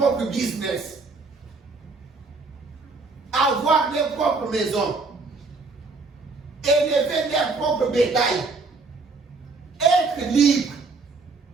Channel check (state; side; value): quieter; left; 4.0 dB